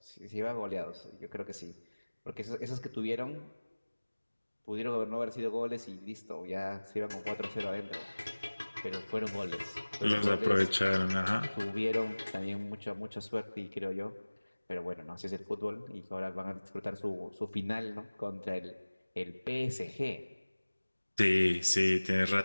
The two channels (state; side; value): inverted; both; correlation -1.00